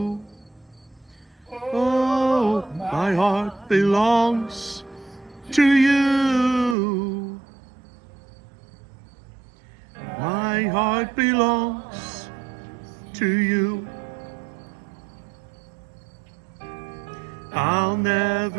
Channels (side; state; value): left; drops out; at 6.8 s